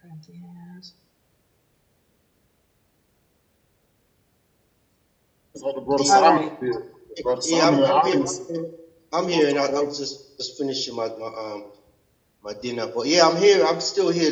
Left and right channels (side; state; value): both; identical; correlation 1.00